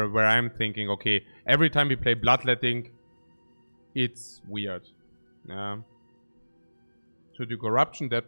I'm thinking, okay, every time we play bloodletting, it's weird. Yeah. To do corruption,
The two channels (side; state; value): both; inverted; correlation -1.00